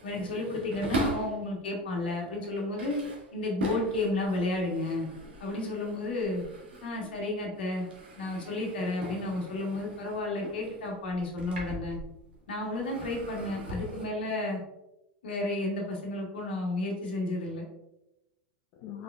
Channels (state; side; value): normal; both; correlation 0.39